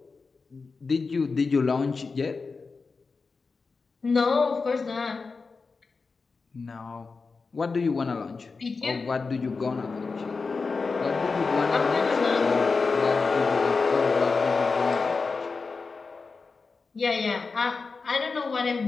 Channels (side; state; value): right; quieter; 4.4 dB